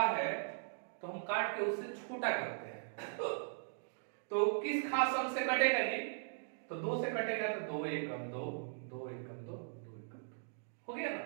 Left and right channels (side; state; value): left; silent; digital silence